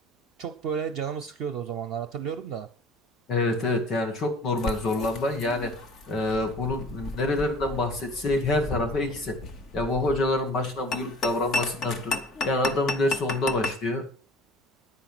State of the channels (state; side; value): normal; both; correlation 0.46